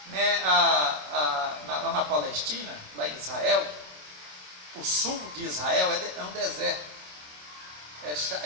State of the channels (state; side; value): late; left; 27 ms